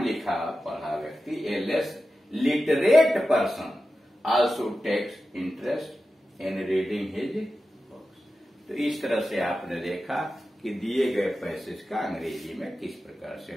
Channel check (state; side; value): normal; both; correlation 0.92